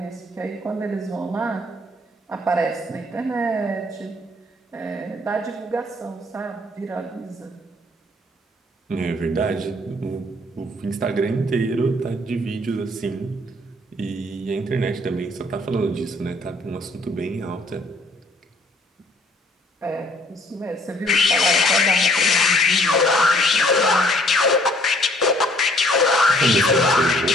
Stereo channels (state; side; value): normal; both; correlation 0.61